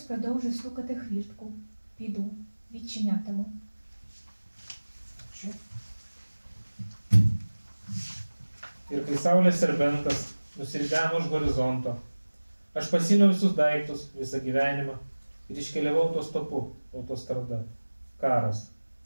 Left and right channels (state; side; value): inverted; both; correlation -1.00